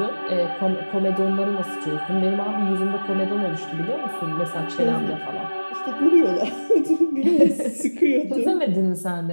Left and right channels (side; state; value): both; inverted; correlation -1.00